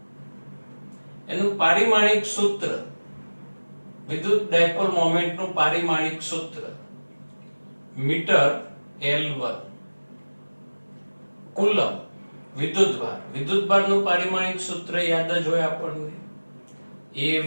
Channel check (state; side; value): inverted; both; correlation -1.00